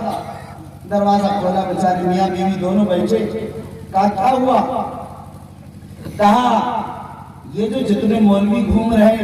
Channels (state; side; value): identical; both; correlation 1.00